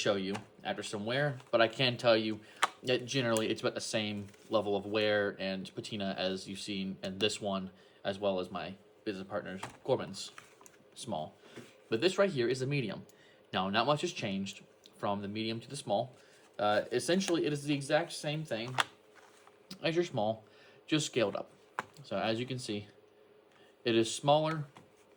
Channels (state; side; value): identical; both; correlation 1.00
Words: you after some wear, but I can tell you that generally it's about the same level of wear and patina as you've seen in this one, as well as my business partner's Corbin's Small. But this right here is a medium. Now, not much has changed from the medium to the small. Essentially, it is the exact same thing as your small, just scaled up. So as you can see, it is smaller